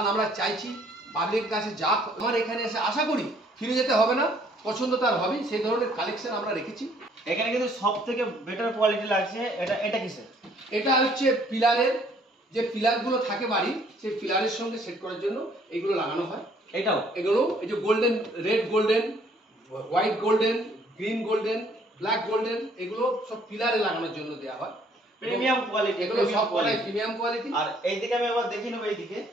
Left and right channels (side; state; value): both; normal; correlation 0.62